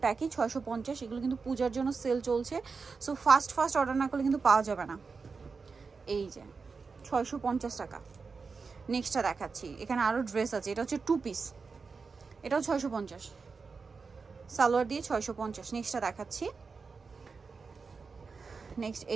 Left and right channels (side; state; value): left; quieter; 4.8 dB